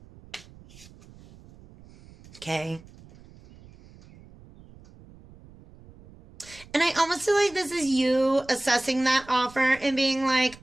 Okay. And I almost feel like this is you assessing that offer and being like,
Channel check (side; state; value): right; noise; rumble, 23 dB below the sound